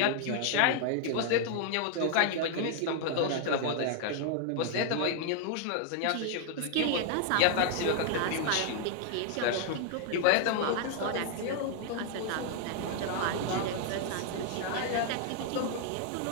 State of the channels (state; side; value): different; both; correlation 0.00